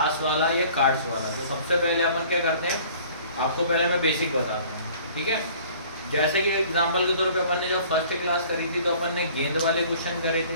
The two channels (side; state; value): both; inverted; correlation -0.51